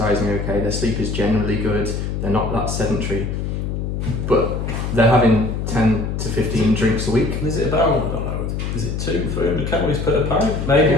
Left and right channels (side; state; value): left; noise; hum, 3 dB below the sound